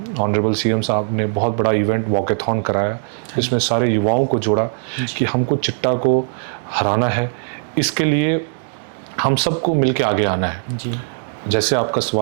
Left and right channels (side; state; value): left; silent; 66 dB below the other